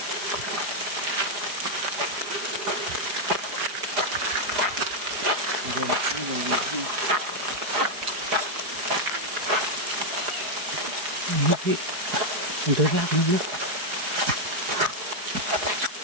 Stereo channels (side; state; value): left; late; 4.8 ms